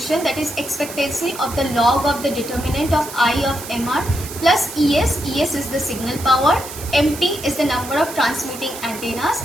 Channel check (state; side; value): noise; right; hiss, 12 dB below the sound